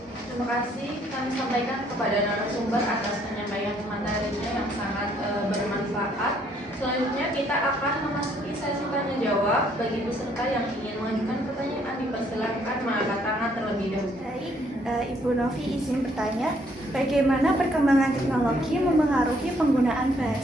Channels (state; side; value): normal; both; correlation 0.67